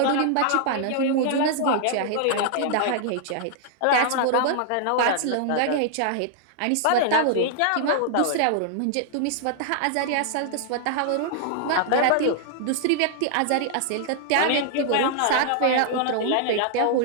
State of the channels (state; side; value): different; both; correlation -0.01